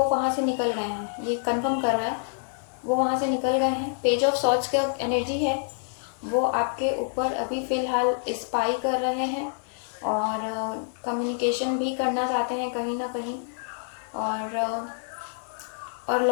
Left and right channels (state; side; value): silent; right; digital silence